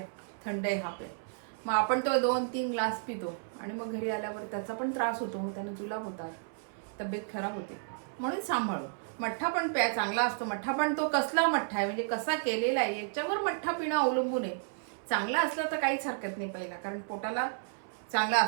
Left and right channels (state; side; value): silent; left; 56 dB below the other